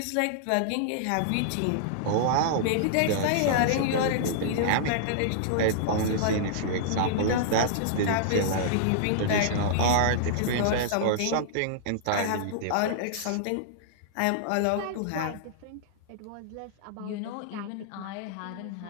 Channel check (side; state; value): both; different; correlation -0.02